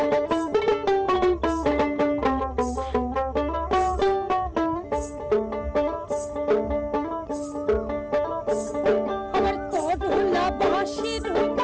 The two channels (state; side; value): identical; both; correlation 1.00